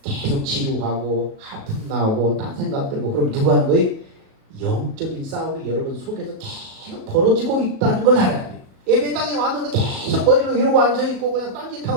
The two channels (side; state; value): left; late; 36 ms